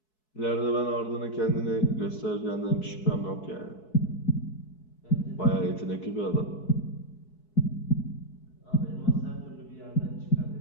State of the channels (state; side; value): late; right; 4.7 ms